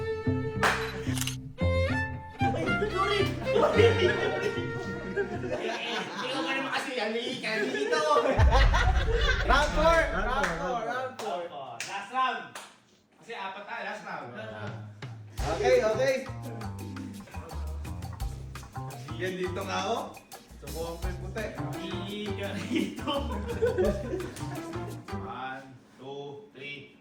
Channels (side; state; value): both; identical; correlation 1.00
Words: ko naman kasi halika dito. Round 4. Round four. Round 4. Last round. Kasi apat tayo, last round. Okay, okay. Yan dito nga ako. Subukan ko yung puti. Halika dito. 1, 2,